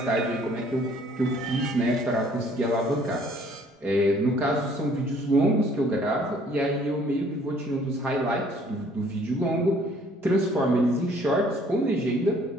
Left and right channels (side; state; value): both; normal; correlation 0.59